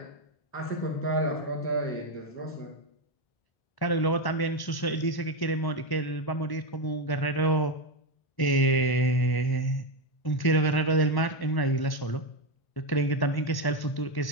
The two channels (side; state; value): right; late; 1.0 ms